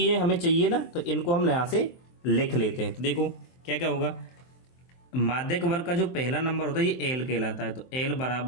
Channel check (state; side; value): late; right; 23 ms